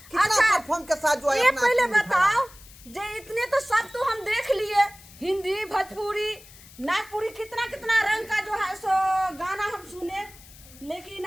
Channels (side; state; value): left; noise; hiss, 21 dB below the sound